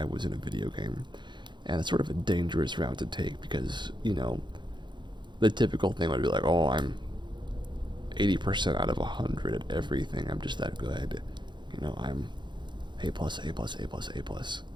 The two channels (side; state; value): left; late; 0.22 ms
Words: was in a video game. And it's sort of a dangerous route to take because, the typical thing would be like, oh, I'm 80% out of 100 at everything. I'm just that good. I'm A plus, A plus, A plus, A plus.